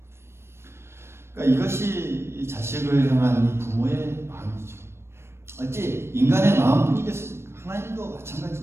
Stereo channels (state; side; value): late; left; 0.12 ms